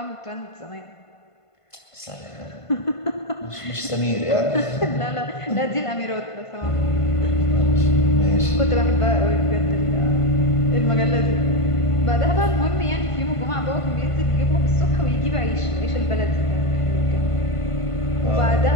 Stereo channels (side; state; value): right; late; 1.5 ms